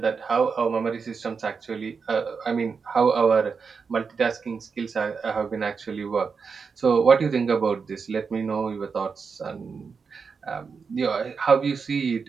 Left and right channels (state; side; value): quieter; left; 5.4 dB